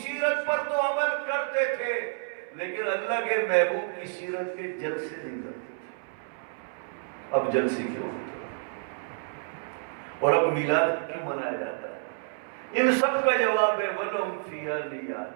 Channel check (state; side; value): silent; left; 59 dB below the other